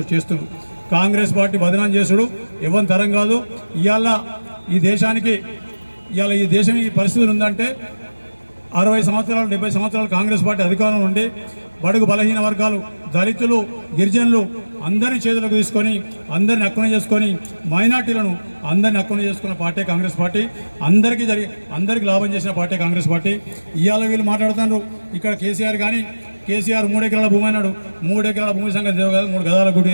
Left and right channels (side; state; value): both; inverted; correlation -1.00